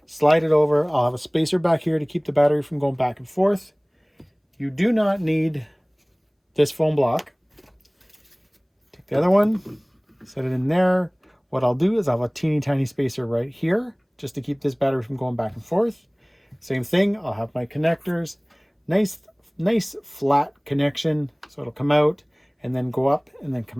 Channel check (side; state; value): both; identical; correlation 1.00